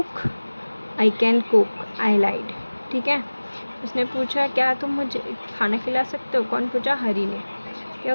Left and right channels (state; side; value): inverted; both; correlation -1.00